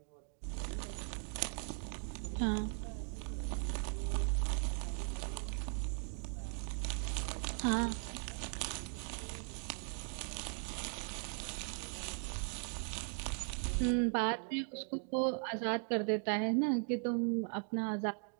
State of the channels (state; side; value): silent; left; 52 dB below the other